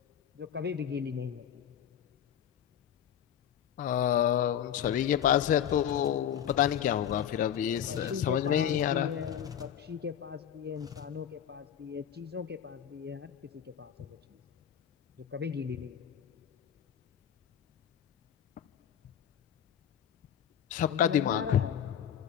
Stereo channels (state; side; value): quieter; right; 9.4 dB